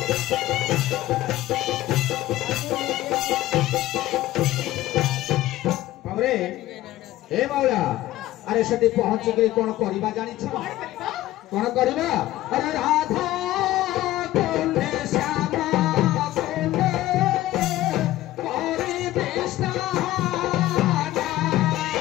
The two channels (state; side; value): quieter; right; 15.6 dB